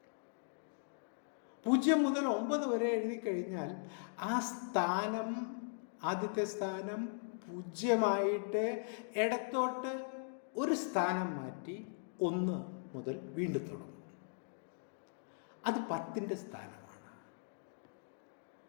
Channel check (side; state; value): right; silent; digital silence